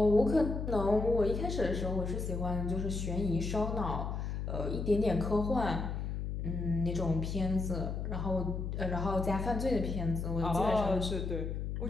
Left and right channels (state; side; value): noise; left; hum, 3 dB below the sound